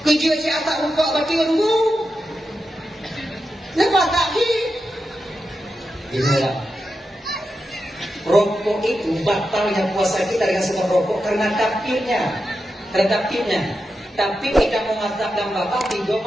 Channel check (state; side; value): normal; both; correlation 0.89